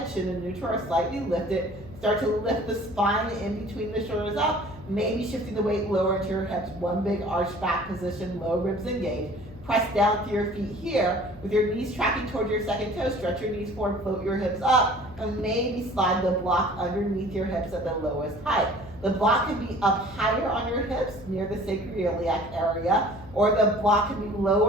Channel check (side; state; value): left; noise; hum, 18 dB below the sound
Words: chin and neutral are slightly lifted. Start to lift the spine in between the shoulders up, maybe shifting the weight lower into your hips. One big arch back position, low ribs engaged. Press down through your feet here with your knees tracking toward your second toe. Stretch your knees forward, float your hips up, and maybe slide the block underneath your hips at the lowest height. The block can be up higher on your hips near the sacroiliac area, or the block can be